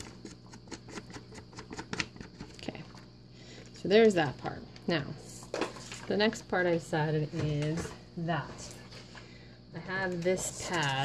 there's that part. Now, the next part I decided is that. I have this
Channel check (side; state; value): both; identical; correlation 1.00